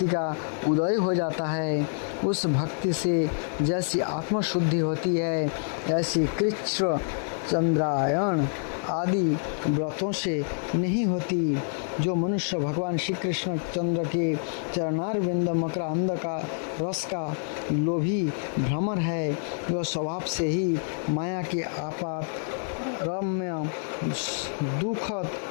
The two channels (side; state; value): right; silent; 60 dB below the other